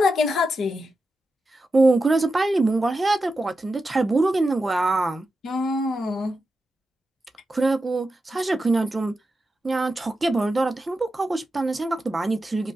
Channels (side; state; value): both; normal; correlation 0.89